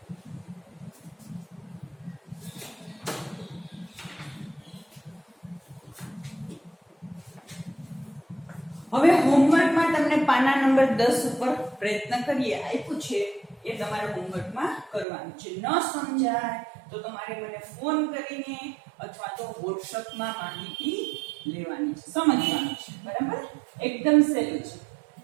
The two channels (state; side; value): drops out; left; at 15.1 s